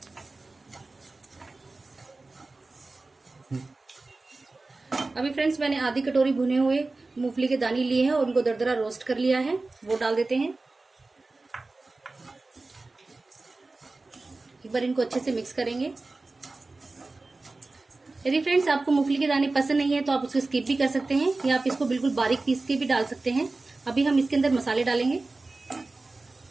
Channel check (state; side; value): quieter; left; 3.4 dB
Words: अभी फ्रेंड्स मैंने आधी कटोरी भुने हुए मूंगफली के दाने लिए हैं और उनको दरदरा रोस्ट कर लिया है, वो डाल देते हैं। एक बार इनको अच्छे से मिक्स करेंगे। यदि फ्रेंड्स आपको मूंगफली के दाने पसंद नहीं है तो आप उसको स्किप भी कर सकते हैं या आप इसको बिल्कुल बारीक पीस के भी डाल सकते हैं। अभी हम इसके अंदर मसाले डालेंगे।